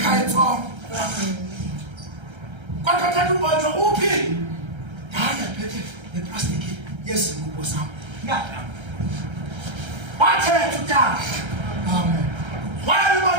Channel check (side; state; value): left; late; 1.3 ms